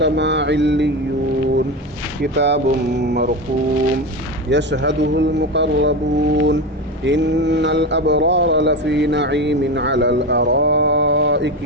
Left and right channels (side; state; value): both; normal; correlation 0.20